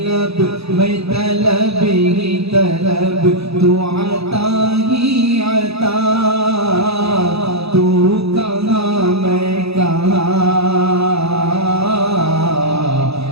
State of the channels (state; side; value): late; left; 0.78 ms